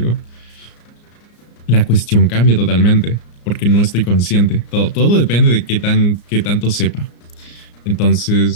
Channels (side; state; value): right; late; 34 ms